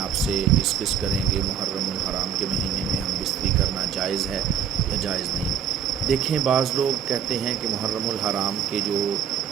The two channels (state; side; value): quieter; left; 8.5 dB